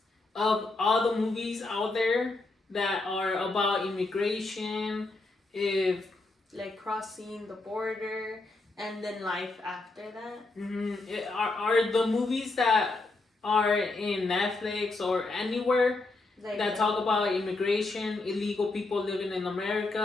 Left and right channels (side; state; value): right; quieter; 3.3 dB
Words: of all the movies out there that are about immigration, if like crossing the border and then life after that. are the movies that are in Netflix or anywhere Like that talk about immigration, illegal people living in